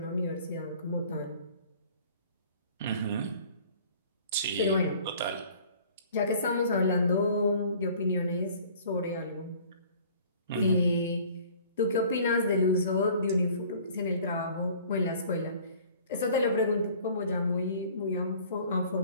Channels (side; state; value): both; inverted; correlation -0.51